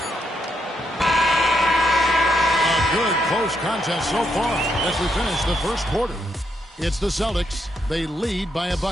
close contest so far as we finish the first quarter. It's the Celtics. They lead by a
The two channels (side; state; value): both; normal; correlation 0.79